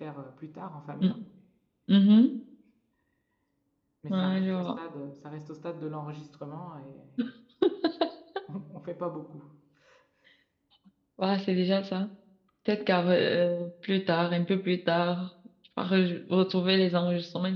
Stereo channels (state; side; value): identical; both; correlation 1.00